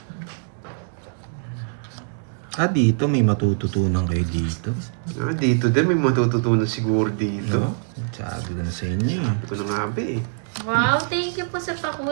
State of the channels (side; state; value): left; silent; digital silence